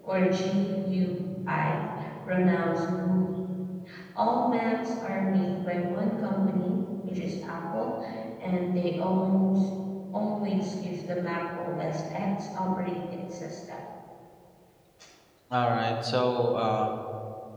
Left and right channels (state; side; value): identical; both; correlation 1.00